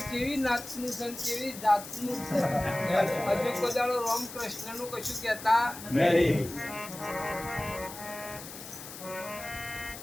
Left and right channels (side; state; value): left; noise; hiss, 12 dB below the sound